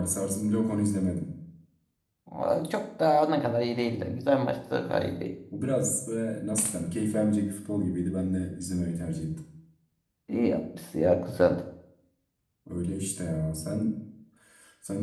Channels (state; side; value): identical; both; correlation 1.00